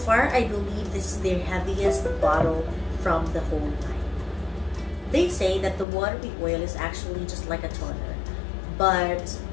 I believe this is their heaviest bottle from the whole line. They say that the Watery Oil is actually just like a toner, but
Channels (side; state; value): right; drops out; at 5.9 s